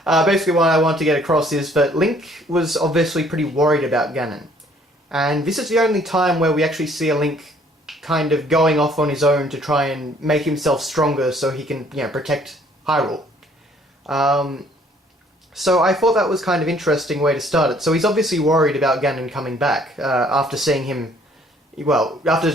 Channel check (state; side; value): normal; both; correlation 0.60